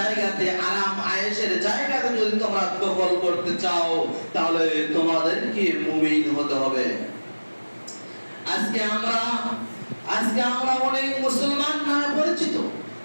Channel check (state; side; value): inverted; both; correlation -1.00